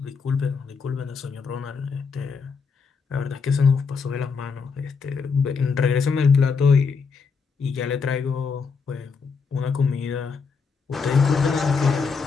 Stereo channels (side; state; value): right; quieter; 5.3 dB